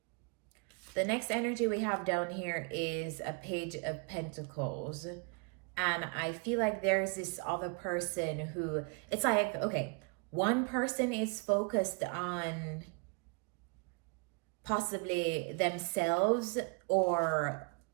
The next energy we have down here is a Page of Pentacles. And I feel like there's this other person who, it's like, okay, one person is focused on possibly themselves or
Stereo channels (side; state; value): left; quieter; 33.4 dB